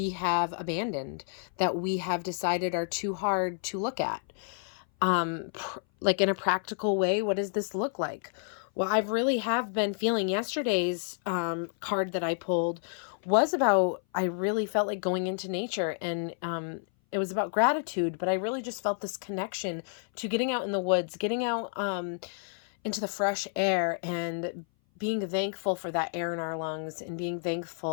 have abandoned, that we have decided are too hard to look at. Like in a practical way, what does this look like? Well, I really have been feeling yesterday's card that I pulled was about, I really felt like going into nature, and it was about gratitude, but I really just felt this connection to getting out in the woods, getting out into the fresh air, and being thankful for that air in our lungs, and being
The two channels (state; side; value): silent; right; 57 dB below the other